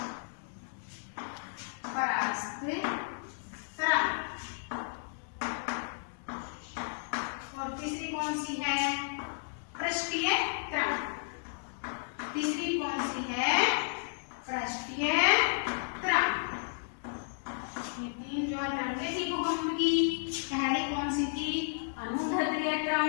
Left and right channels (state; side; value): silent; right; digital silence